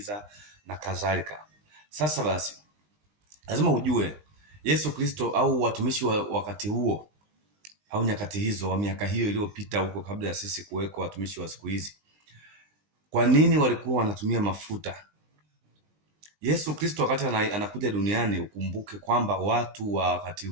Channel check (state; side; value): late; left; 20 ms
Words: na kadhalika. Sasa basi, lazima ujue Yesu Kristo au watumishi wa wakati huo au nyakati hizo wa miaka hiyo iliyopita huko kabla ya sisi kuweko watumishi wa siku hizi, kwa nini walikuwa wanatumia mafuta? Yesu Kristo wakati anakuja duniani, ukumbuke kwamba watu wa wakati